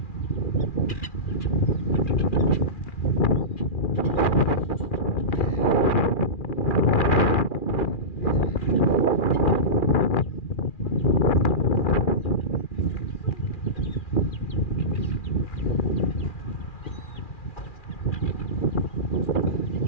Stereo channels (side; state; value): right; late; 2.4 ms